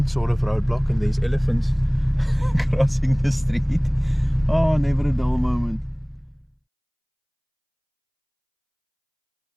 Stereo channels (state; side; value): identical; both; correlation 1.00